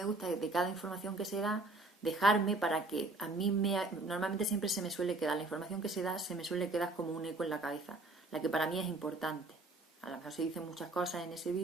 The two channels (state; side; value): quieter; left; 3.0 dB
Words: gusta es de cada información que se da, dejarme para que a mí normalmente siempre se me suele quedar, la información que se da se me suele quedar como un eco en la cabeza, la que para mí es importante. A lo mejor se dicen muchas cosas en ese